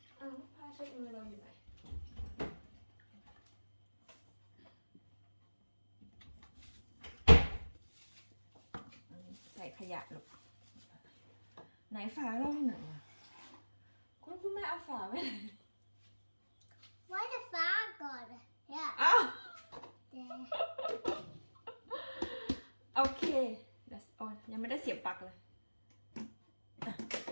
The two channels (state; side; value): inverted; both; correlation -1.00